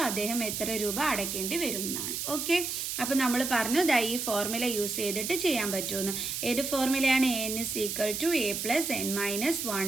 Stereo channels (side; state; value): right; noise; hiss, 3 dB below the sound